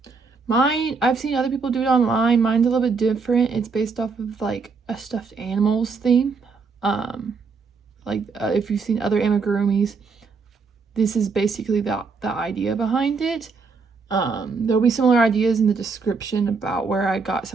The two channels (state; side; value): quieter; left; 4.8 dB